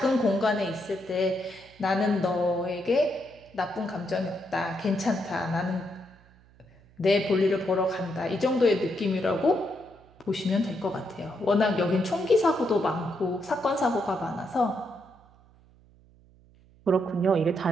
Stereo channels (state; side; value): noise; right; hum, 28 dB below the sound